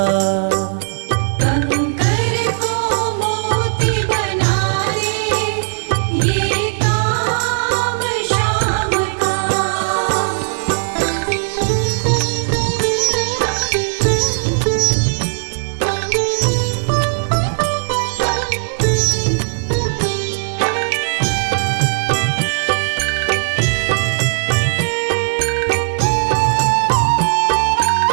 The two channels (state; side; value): silent; left; digital silence